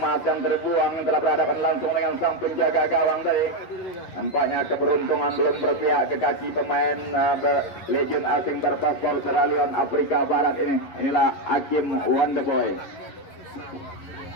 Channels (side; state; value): right; late; 11 ms